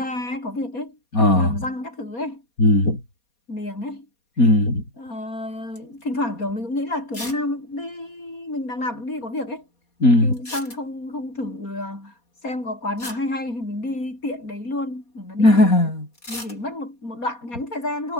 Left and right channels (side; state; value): right; late; 4.2 ms